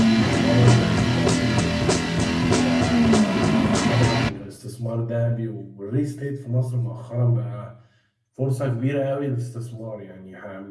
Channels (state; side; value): identical; both; correlation 1.00